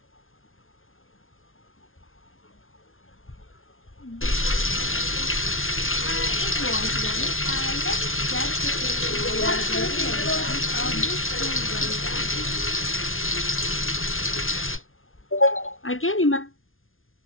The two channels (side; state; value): right; late; 0.60 ms